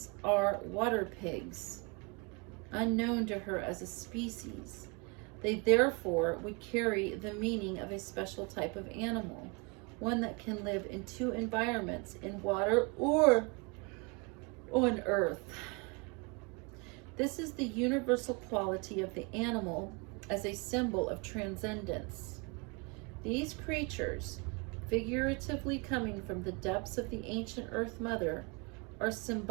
are water pigs, unknown to her as a species. They therefore would carry the meaning of a special type of animal, one that can live in two environments, in water or on earth. This is the universal quality of the animal as a symbol of transcendence. These creatures, figuratively coming from the depths of the ancient Earth Mother, are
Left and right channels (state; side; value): quieter; left; 30.8 dB